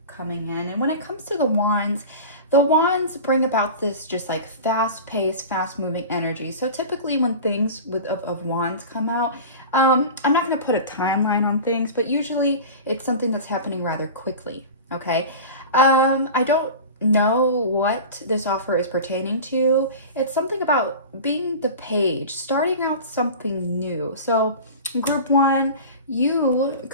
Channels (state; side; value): inverted; both; correlation -0.33